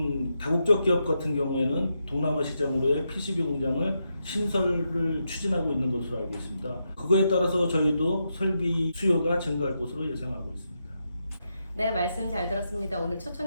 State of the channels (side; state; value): both; inverted; correlation -0.84